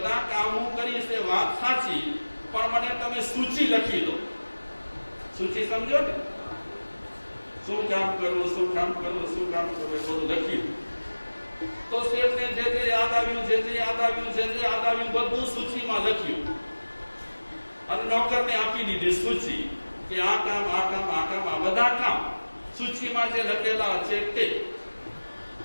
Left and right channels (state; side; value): inverted; both; correlation -1.00